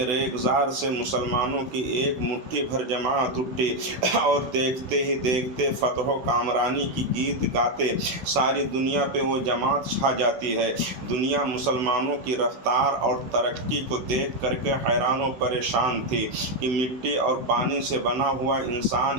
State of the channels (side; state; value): left; late; 16 ms